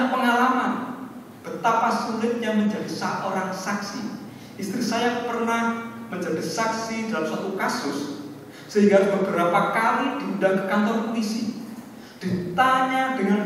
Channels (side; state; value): both; identical; correlation 1.00